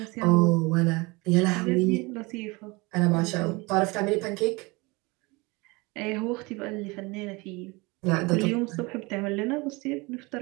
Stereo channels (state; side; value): quieter; left; 25.2 dB